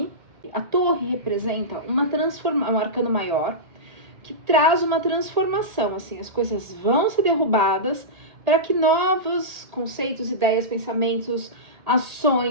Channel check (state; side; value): late; left; 1.8 ms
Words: A torre representa uma transformação, um arcano maior, que traz uma transformação, assim, as coisas vão ser derrubadas para que novos conceitos, ideias, pensamentos,